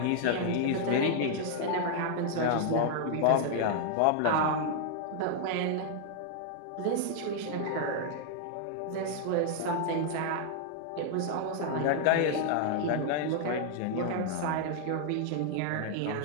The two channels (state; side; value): different; both; correlation 0.00